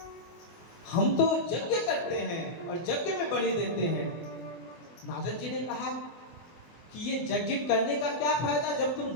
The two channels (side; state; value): right; late; 24 ms